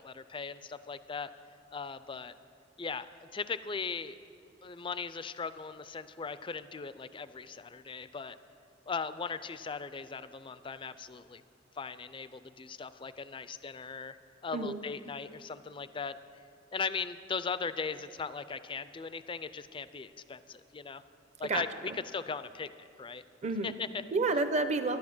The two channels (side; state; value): both; normal; correlation 0.08